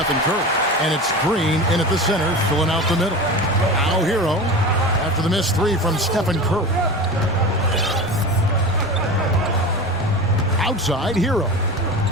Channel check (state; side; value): normal; both; correlation 0.30